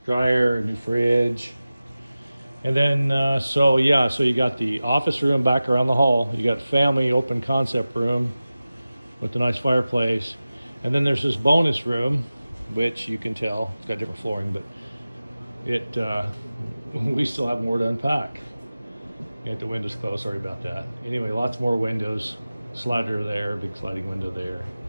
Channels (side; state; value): both; inverted; correlation -0.96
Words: dryer, a new fridge. And then, so you got the office room back around the hall. You got family open concept room with a nice fireplace. And then there's this bonus room, which you can tell, it's got different flooring, but we still have more to unpack. Got the windows closed, sorry about that. Anyway, lots more windows, slider there, big sliding window there.